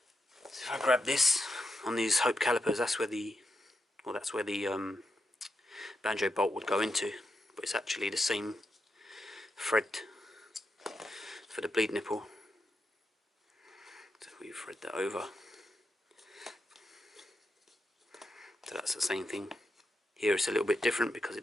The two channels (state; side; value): normal; both; correlation 0.86